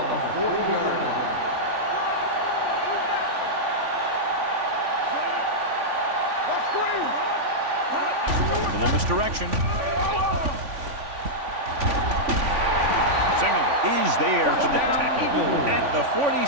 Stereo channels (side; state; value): left; late; 3.5 ms